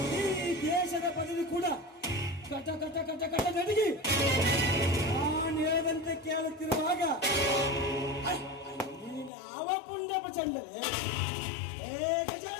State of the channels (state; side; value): drops out; right; at 9.3 s